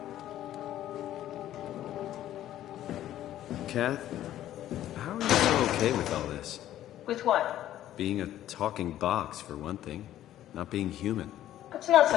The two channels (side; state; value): right; quieter; 12.7 dB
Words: Kath, how are you so okay with all this? With what? Being a talking box, for one thing. Not being human. It's not